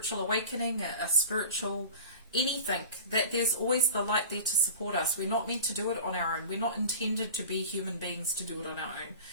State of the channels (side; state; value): both; inverted; correlation -0.37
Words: awakening, a spiritual anything, that there's always the light there to support us. We're not meant to do it on our own. We're not intended to be human beings to do it on our own.